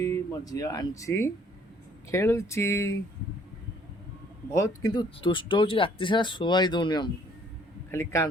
मो झी आंची खेलुची बहुत किंतु दुष्ट हो राति सारा शुआई दौनी आमको खाली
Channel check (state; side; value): normal; both; correlation 0.61